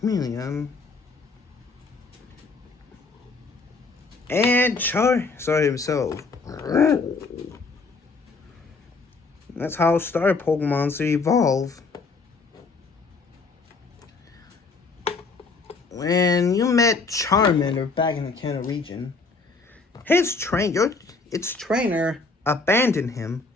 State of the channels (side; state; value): right; quieter; 4.1 dB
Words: And Charizard himself. That's how Star Pokemon to evolve. When you met Charmander back in the Kanto region, its trainer abandoned him